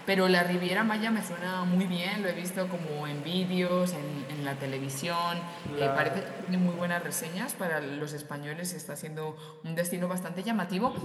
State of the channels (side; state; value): both; identical; correlation 1.00